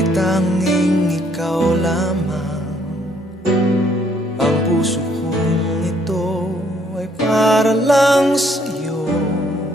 tanging ikaw lamang. Ang puso kong ito ay para lang sa'yo.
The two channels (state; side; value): normal; both; correlation 0.67